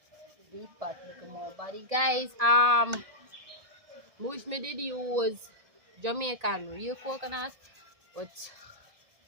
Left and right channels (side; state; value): left; late; 1.7 ms